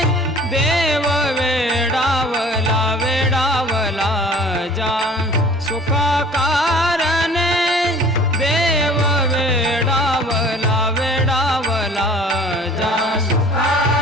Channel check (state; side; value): normal; both; correlation 0.48